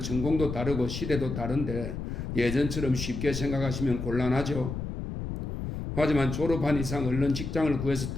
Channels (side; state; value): left; noise; rumble, 5 dB below the sound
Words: 다르고 시대도 다른데 예전처럼 쉽게 생각하시면 곤란하죠. 하지만 졸업한 이상 얼른 직장을 구해서